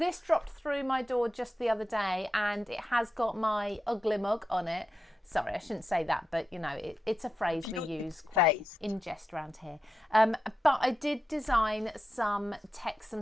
dropped through my door just the other day and it has got my ugly mug on it. Sorry, I shouldn't say that, but you know, it's a phrase we use quite in jest around here. But I did design some text,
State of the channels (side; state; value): both; normal; correlation 0.89